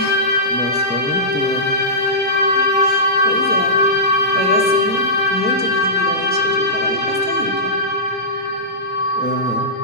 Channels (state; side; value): normal; both; correlation -0.18